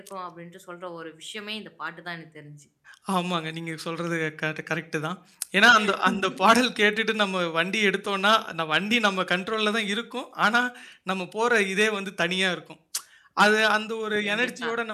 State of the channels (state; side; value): identical; both; correlation 1.00